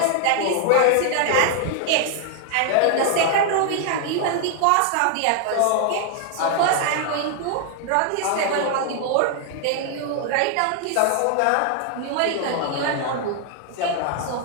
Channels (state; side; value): different; both; correlation 0.00